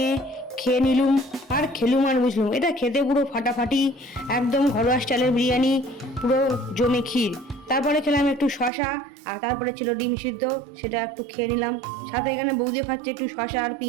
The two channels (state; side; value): drops out; left; at 8.7 s